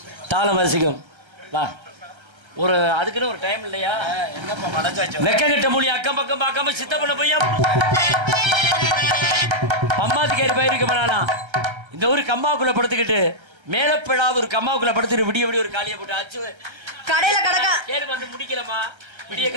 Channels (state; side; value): late; left; 1.3 ms